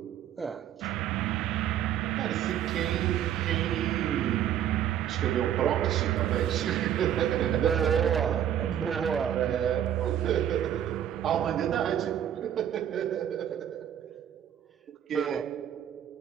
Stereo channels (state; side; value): quieter; left; 10.3 dB